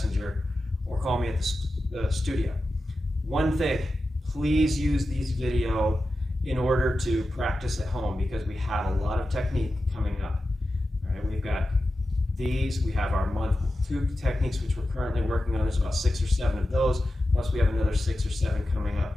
or call me at the studio. One thing, please use these video in order to practice at home, because we have a lot of technique coming up. these. We have our month 2 techniques, which we're currently working on. There's about 6 or 7 of those, plus we have another 6 or 7 coming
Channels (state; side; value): normal; both; correlation 0.92